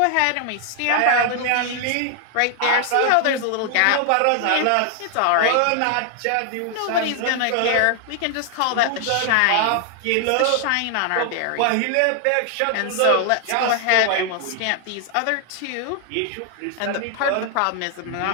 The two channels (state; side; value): different; both; correlation 0.00